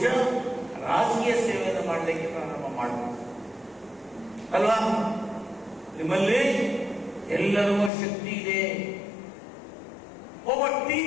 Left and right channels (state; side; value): drops out; right; at 7.9 s